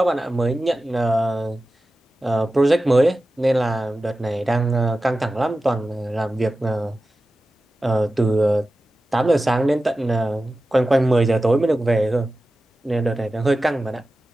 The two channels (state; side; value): normal; both; correlation 0.94